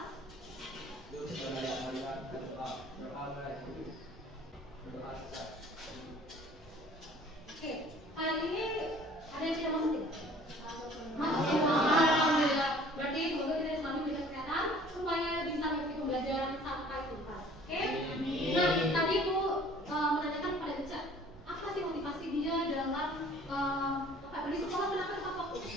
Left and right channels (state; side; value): normal; both; correlation 0.52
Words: Oke, kali ini ada yang tidak masuk tidak? Masuk. Alhamdulillah. Berarti semoga kita selalu diberikan kesehatan supaya bisa mengikuti pembelajaran sampai tuntas. Oke? Nah, tadi Bu menanyakan kepada Ica, apa sih motivasi dia dalam di sekolah kenapa tepat waktu?